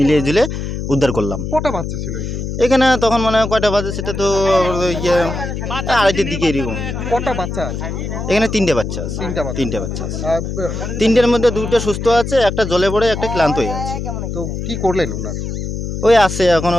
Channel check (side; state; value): left; noise; hum, 5 dB below the sound